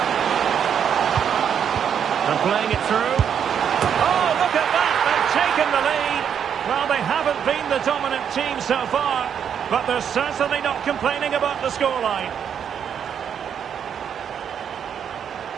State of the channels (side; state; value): left; quieter; 8.2 dB